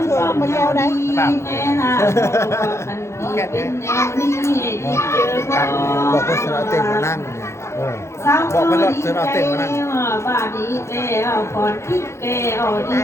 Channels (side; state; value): right; late; 0.13 ms